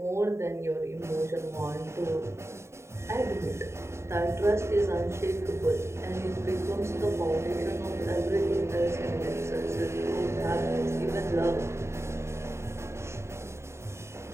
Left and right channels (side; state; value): left; late; 0.13 ms